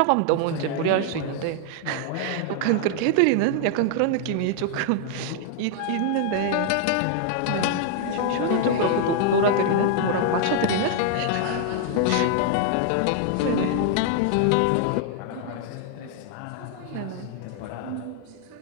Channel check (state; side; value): different; both; correlation 0.00